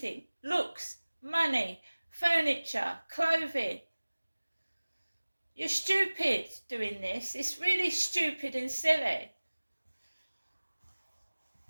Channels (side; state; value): both; inverted; correlation -1.00